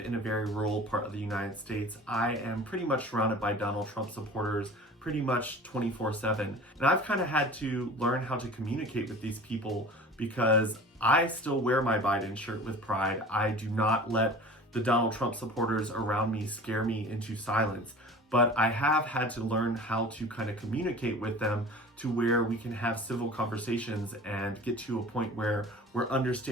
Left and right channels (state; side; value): normal; both; correlation 0.40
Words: a very rural part of the United States, I am pretty much surrounded by Donald Trump supporters pretty much 24/7. And I've kind of had to learn how to communicate with these people, because I still wear my Biden shirt with pride. I do not let the Donald Trump supporters around me scare me into silence. But I have had to learn how to kind of communicate with them to where we can have civil conversations and get to a point where we're